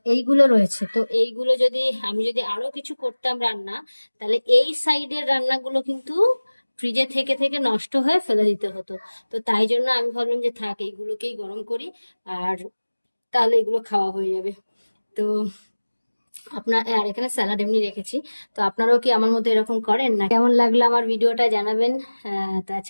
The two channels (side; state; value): both; inverted; correlation -1.00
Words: এইগুলো রয়েছে। তো এইগুলো যদি আমি যদি আরো কিছু করতাম রান্না, তাহলে এই সাইডের রান্নাগুলো কিন্তু ফ্রিজে থেকে থেকে নষ্ট হয়ে ফেলে দিতে হতো। তো তাই জন্য আমি ভাবলাম যে থাক, এইগুলোকেই গরম করি, আর তাহলে এগুলো খাওয়া হয়ে যাবে। তো আর এখানে স্যালাড এমনি রেখেছি। তো আপনারাও কি আমার মতো এরকম করেন না? কেমন লাগলো আমার ভিডিওটা জানাবেন। তো